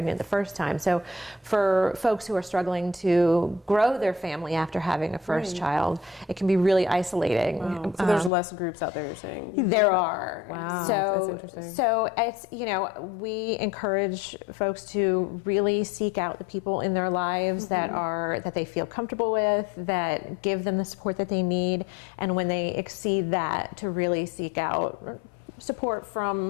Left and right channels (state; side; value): drops out; right; at 8.3 s